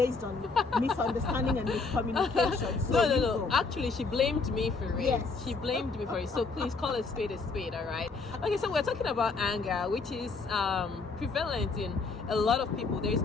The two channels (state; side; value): quieter; right; 4.2 dB